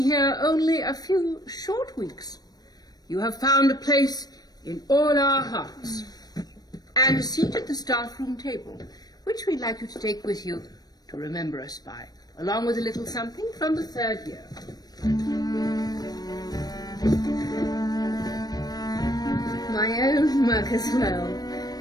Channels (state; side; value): late; right; 0.19 ms